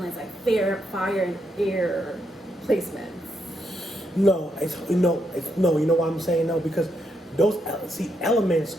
like fire and air placements. No, no. You know why I'm saying no? Because those elements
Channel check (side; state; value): both; normal; correlation 0.79